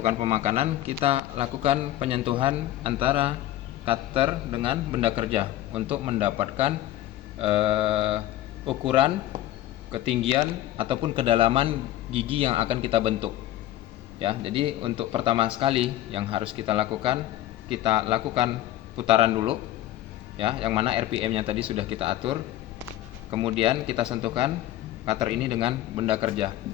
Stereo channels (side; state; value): right; quieter; 13.9 dB